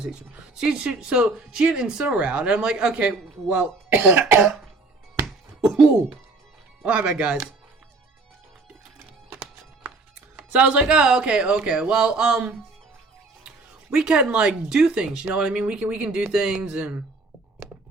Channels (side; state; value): left; quieter; 3.5 dB